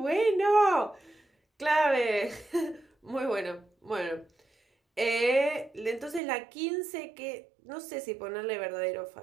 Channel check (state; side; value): drops out; left; at 6.2 s